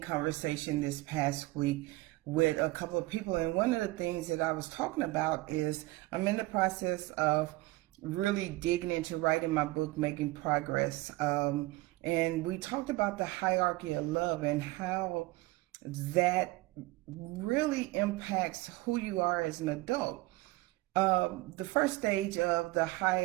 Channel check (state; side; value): quieter; left; 20.4 dB